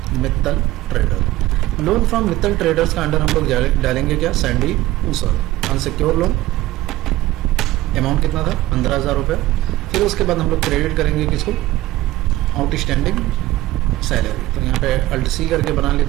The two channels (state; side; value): quieter; left; 16.6 dB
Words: Mittal trader. Loan from Mittal traders का अंडर हम लोग डालेंगे क्या, सैंडी ऊसर। अनसिक्योर लोन, अमाउंट कितना था, 15,000 रुपये। फिर उसके बाद हम लोग क्रेडिट करेंगे किसको, आउटस्टैंडिंग सैलरी। तो यहाँ पे Alt+C करके बना